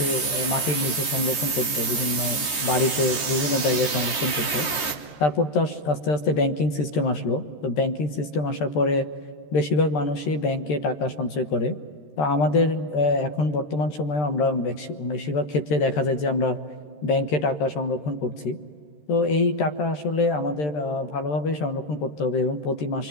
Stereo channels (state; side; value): late; right; 13 ms